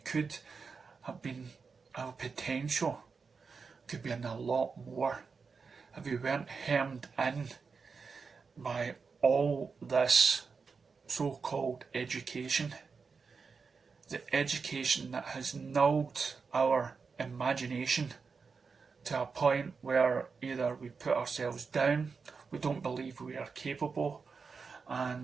could have been, our potential could be in a lot more if we weren't hemmed in by all this so-called education. The education that has nulled our imagination to a point where either we put ourselves down, we don't believe we are capable,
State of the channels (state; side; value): quieter; left; 5.1 dB